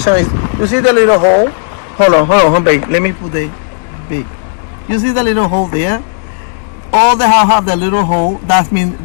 is. You see the little hole? Hold on, babe. Let me put the big. You see the little hole there? All the house have the little hole. That means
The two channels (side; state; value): right; silent; digital silence